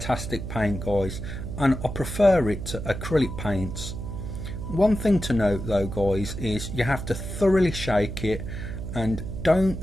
paint, guys, and I prefer it to acrylic paints. One thing to note though, guys, is you have to thoroughly shake it and don't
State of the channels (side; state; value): right; noise; hum, 7 dB below the sound